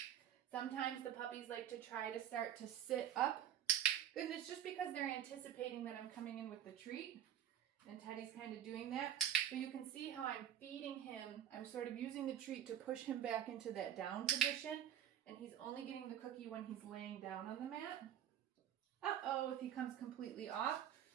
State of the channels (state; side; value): quieter; left; 10.3 dB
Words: Sometimes the puppies like to try to start to sit up. And it's just because they're anticipating that I'm coming in with the treat. And Teddy's kind of doing that. So you can see how I'm feeding him. I'm sort of using the treat to push him back into that down position. And he's only getting the cookie when he's laying down on the mat. Uh-oh, if he comes completely off,